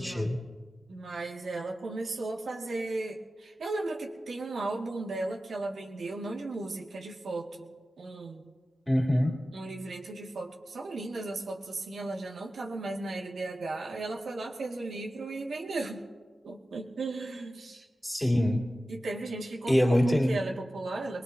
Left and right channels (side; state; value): both; normal; correlation 0.94